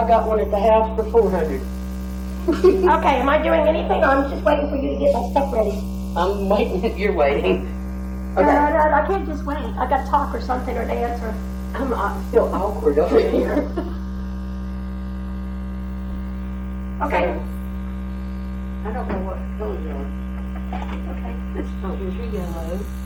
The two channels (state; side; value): identical; both; correlation 1.00